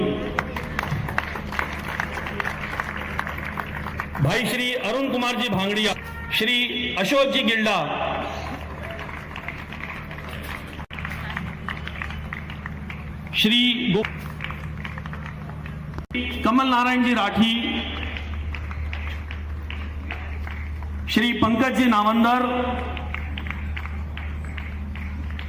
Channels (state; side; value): identical; both; correlation 1.00